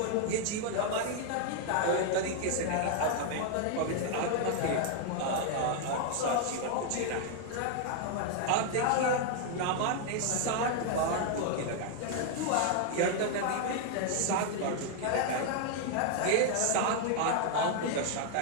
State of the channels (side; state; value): both; different; correlation 0.00